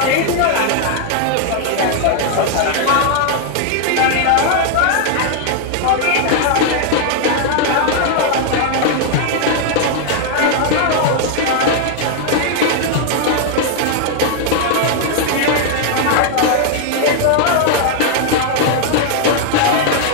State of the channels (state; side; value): different; both; correlation 0.00